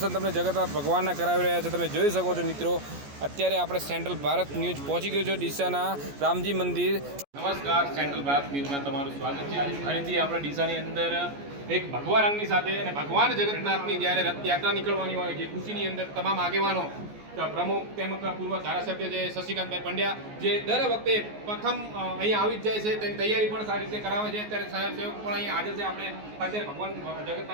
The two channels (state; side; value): late; left; 14 ms